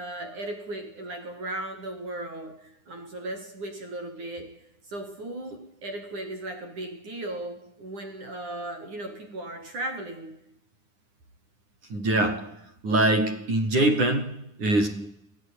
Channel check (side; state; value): left; late; 9.8 ms